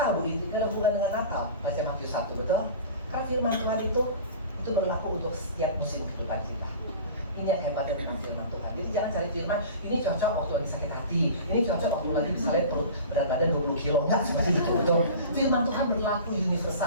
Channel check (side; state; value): both; inverted; correlation -0.38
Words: Bu, ini ada hubungan dengan Natal. Baca Matius 1, betul? Karena firman Tuhan itu berlaku untuk setiap musim kehidupan kita. Ini yang hebat dengan firman Tuhan. Jadi jangan cari firman, ini cocok waktu lagi sakit hati, ini cocok waktu lagi misalnya perut berat badan 20 kilo. Enggak seperti itu, betul? Firman Tuhan berlaku